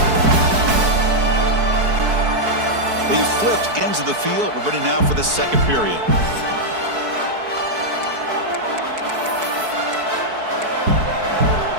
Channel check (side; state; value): left; late; 4.6 ms